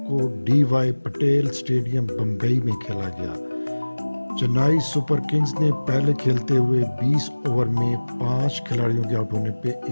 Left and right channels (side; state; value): both; inverted; correlation -1.00